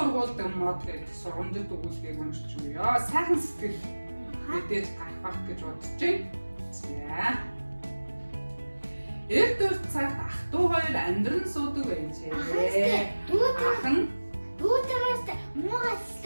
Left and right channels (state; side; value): inverted; both; correlation -1.00